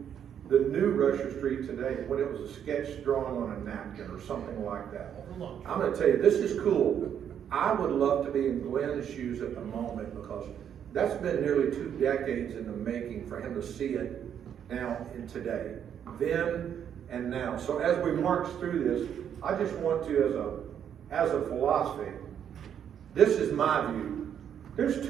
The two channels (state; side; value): quieter; left; 8.9 dB